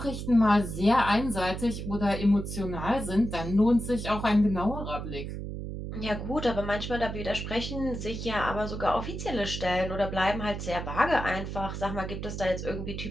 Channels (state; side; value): noise; right; hum, 6 dB below the sound